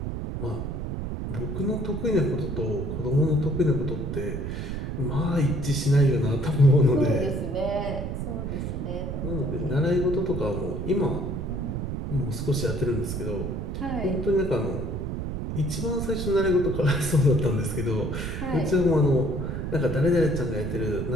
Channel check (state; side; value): noise; right; rumble, 4 dB below the sound